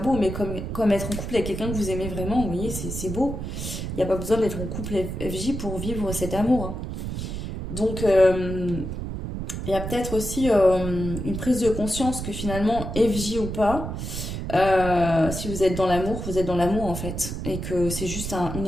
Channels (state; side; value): noise; right; rumble, 5 dB below the sound